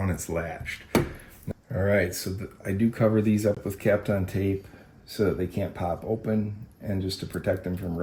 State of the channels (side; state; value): both; identical; correlation 1.00